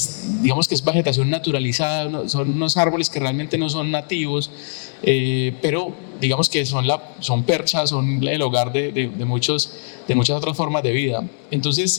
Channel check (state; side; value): silent; right; digital silence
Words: digamos que es vegetación naturalizada, son unos árboles que realmente no son nativos, pero digamos que son perchas, son el hogar de muchas otras formas de vida.